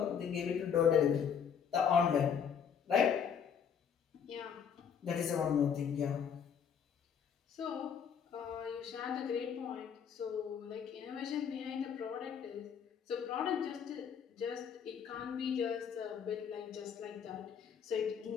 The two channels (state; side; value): quieter; right; 7.5 dB